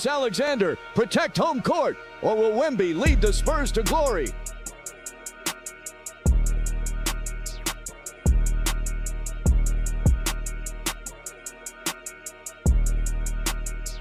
protect home court, or will Wemby lead the Spurs to glory?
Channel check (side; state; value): both; identical; correlation 1.00